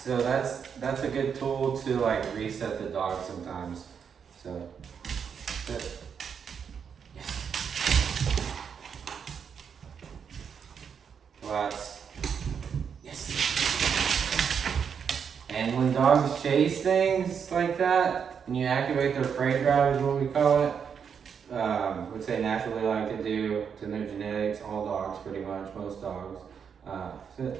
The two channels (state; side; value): quieter; left; 7.0 dB